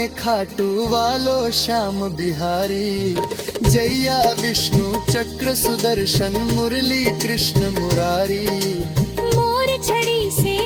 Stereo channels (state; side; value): identical; both; correlation 1.00